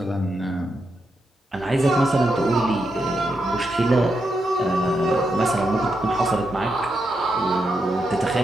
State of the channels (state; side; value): normal; both; correlation 0.84